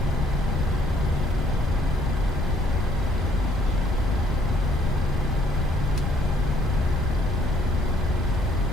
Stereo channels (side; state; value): left; noise; rumble, 4 dB below the sound